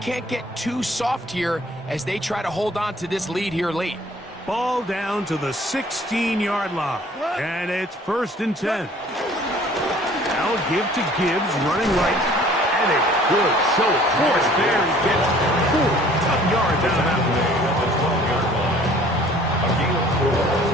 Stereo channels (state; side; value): normal; both; correlation 0.53